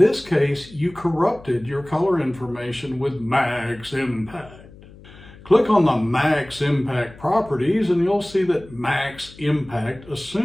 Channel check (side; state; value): left; noise; hum, 21 dB below the sound